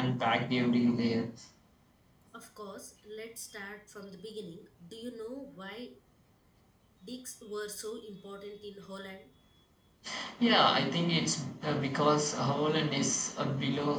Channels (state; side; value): identical; both; correlation 1.00